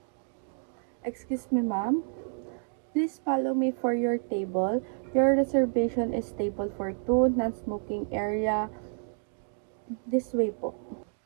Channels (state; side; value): silent; left; digital silence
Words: Excuse me, ma'am. Please follow me for your table. Your reservation is table for two, non-smoking area. This way po.